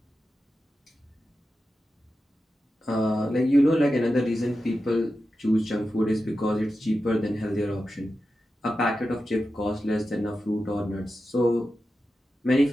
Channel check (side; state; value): both; normal; correlation 0.91